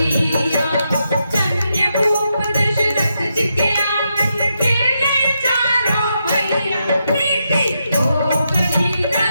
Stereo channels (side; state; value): both; inverted; correlation -0.83